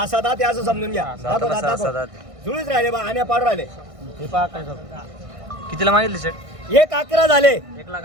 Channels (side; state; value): left; late; 1.6 ms